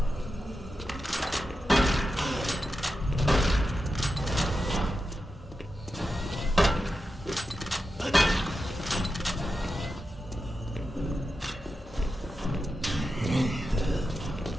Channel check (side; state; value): both; normal; correlation 0.90